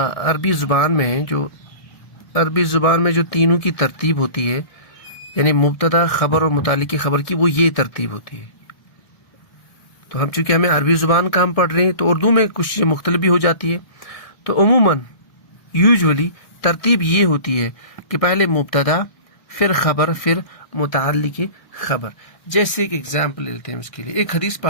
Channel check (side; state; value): right; late; 1.6 ms